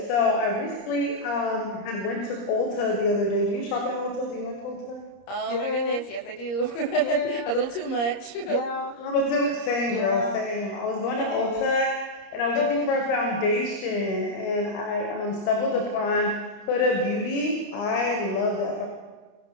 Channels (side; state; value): right; late; 30 ms